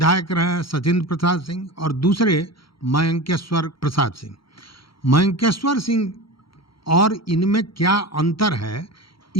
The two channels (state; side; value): late; right; 0.74 ms